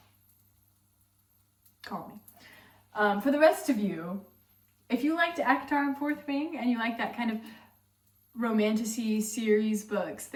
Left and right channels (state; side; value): identical; both; correlation 1.00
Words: Call me. For the rest of you, if you liked ACOTAR and Fourth Wing, and you like that kind of romantasy series books